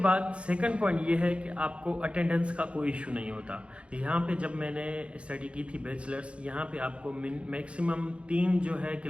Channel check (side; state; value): left; late; 0.060 ms